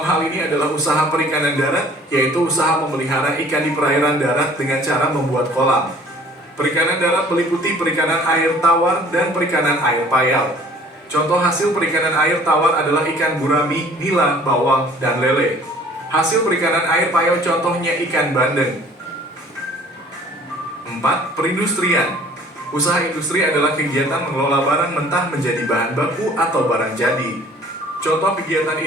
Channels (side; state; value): both; normal; correlation 0.52